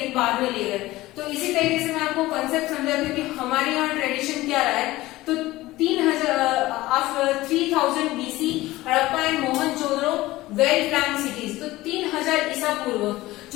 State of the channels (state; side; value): quieter; right; 18.0 dB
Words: बाद में ले गए। तो इसी तरीके से मैं आपको कंसेप्ट समझाती हूँ कि हमारे यहाँ ट्रेडिशन क्या रहा है। तो 3000 BC Harappa and Mohenjodaro well plan cities. तो 3000 ईसा पूर्व